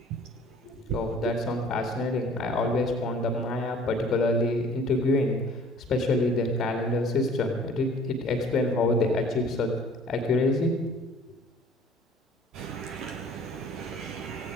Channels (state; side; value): normal; both; correlation 0.51